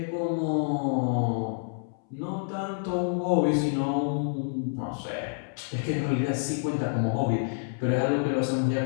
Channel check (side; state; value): right; silent; 59 dB below the other